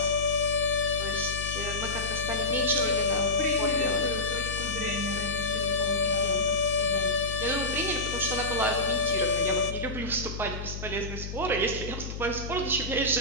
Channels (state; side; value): noise; left; hum, 7 dB below the sound